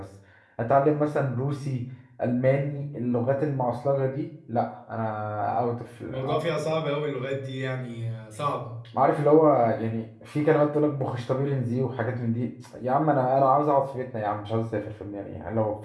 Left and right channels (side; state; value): both; identical; correlation 1.00